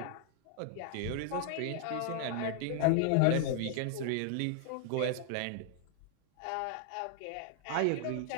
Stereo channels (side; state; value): both; different; correlation 0.00